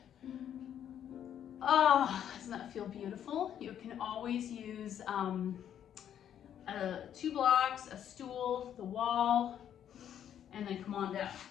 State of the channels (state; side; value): quieter; right; 9.8 dB